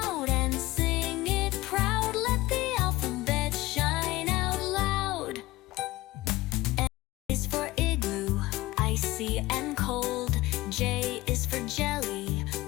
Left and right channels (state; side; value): quieter; right; 18.7 dB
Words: and sing it proud. Let the alphabet shine out loud. M is for igloo, icy and cold. J is for jelly,